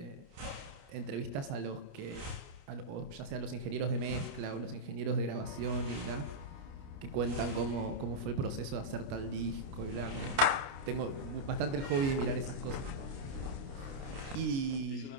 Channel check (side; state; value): left; late; 29 ms